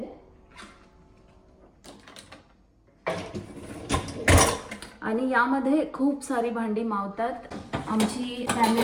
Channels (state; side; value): identical; both; correlation 1.00